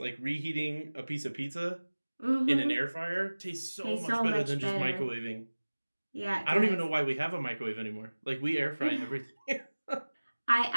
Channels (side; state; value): both; inverted; correlation -1.00